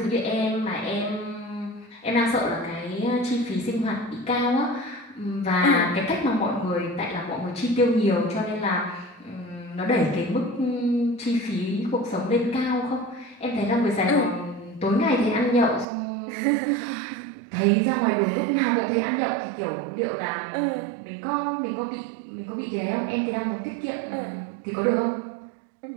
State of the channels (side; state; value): left; drops out; at 15.9 s